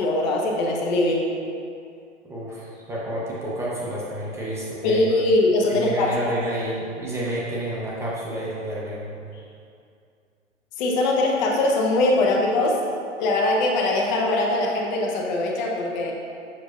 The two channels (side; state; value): both; normal; correlation 0.40